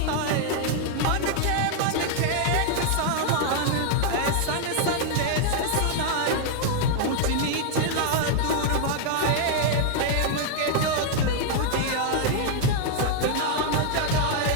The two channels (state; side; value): different; both; correlation 0.00